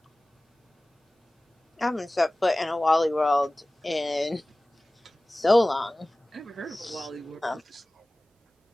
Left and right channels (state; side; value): normal; both; correlation 0.98